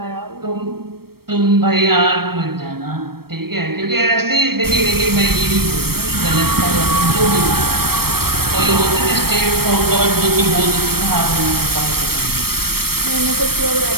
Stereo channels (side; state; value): left; late; 0.95 ms